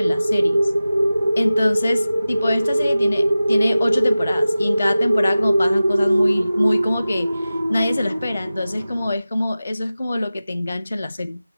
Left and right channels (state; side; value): inverted; both; correlation -0.95